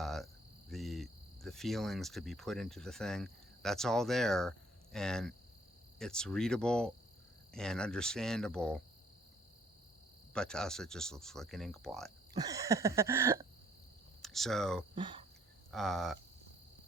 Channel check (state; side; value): normal; both; correlation 0.62